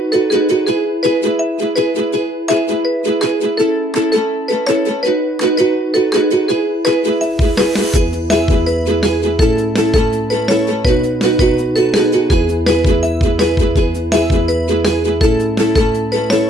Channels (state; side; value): normal; both; correlation 0.71